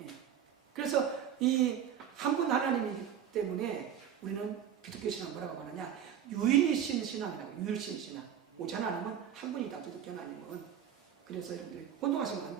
그래서 이 한 분 하나님이기 때문에 우리는 기독교 신앙 뭐라고 말하냐? 유일신 신앙이라고. 유일신 신앙. 오직 하나님은 한 분이다. 기독교 하나님은. 그래서 여러분들이 혼동하시면 안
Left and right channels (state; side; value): quieter; left; 9.2 dB